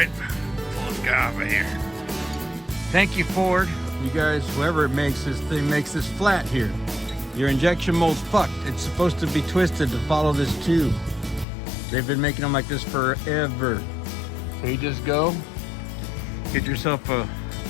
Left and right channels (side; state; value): right; drops out; at 11.5 s